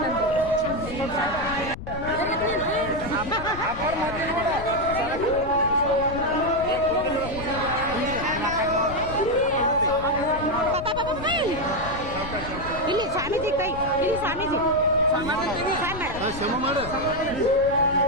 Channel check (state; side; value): noise; left; rumble, 11 dB below the sound